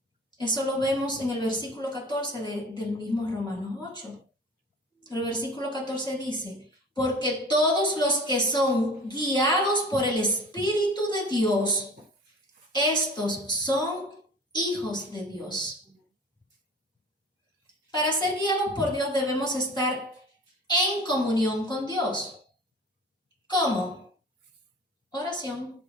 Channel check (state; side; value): normal; both; correlation 0.41